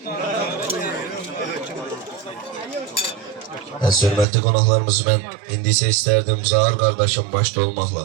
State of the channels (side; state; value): left; drops out; at 4.2 s